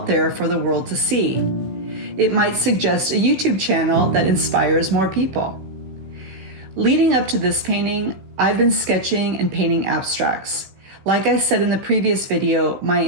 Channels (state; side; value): late; left; 16 ms